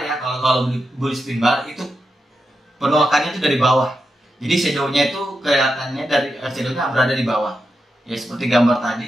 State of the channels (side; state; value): both; normal; correlation 0.87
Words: ya, kalau bullish pin bar itu penolakannya itu dari bawah. Jadi shadownya itu kelihatannya shadownya berada di bawah. Ya seperti gambar